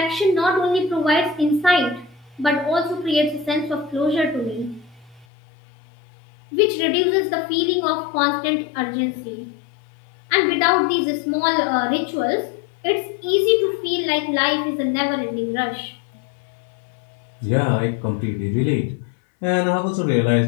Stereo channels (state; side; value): drops out; right; at 5.2 s